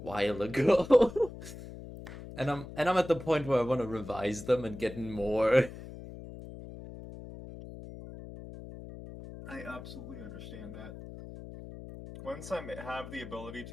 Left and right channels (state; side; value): noise; left; hum, 13 dB below the sound